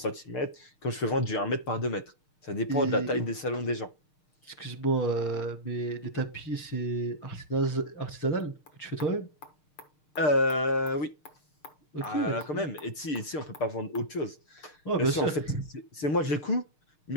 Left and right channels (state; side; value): late; right; 6.7 ms